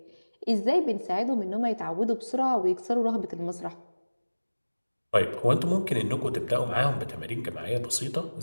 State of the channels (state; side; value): inverted; both; correlation -1.00